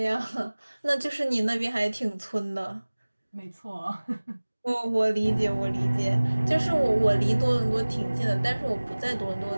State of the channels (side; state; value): both; inverted; correlation -1.00